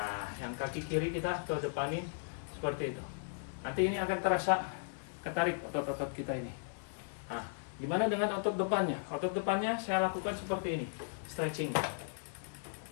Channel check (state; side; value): silent; right; 53 dB below the other